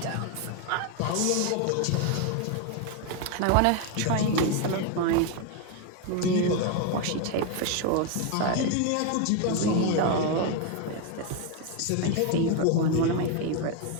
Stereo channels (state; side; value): different; both; correlation 0.02